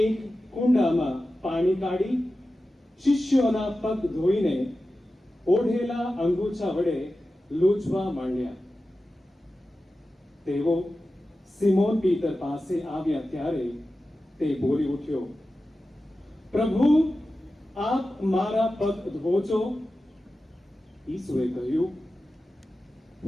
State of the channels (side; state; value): both; normal; correlation 0.94